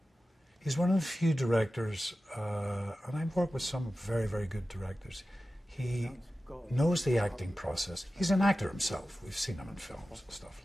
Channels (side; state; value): both; normal; correlation 0.95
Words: he's one of the few directors, and I've worked with some very, very good directors. He knows the acting process. He's an actor himself. We've seen him in films and stuff,